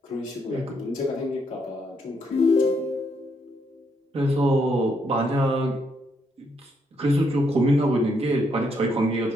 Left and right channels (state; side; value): normal; both; correlation 0.76